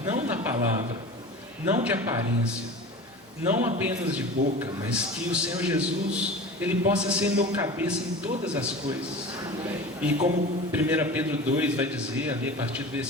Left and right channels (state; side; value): normal; both; correlation 0.35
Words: não na palavra, não de aparência, não apenas de boca, mas que o Senhor Jesus, Ele possa ser meu cabeça em todas as coisas. E como 1 Pedro 2 vai dizer, ali a partir do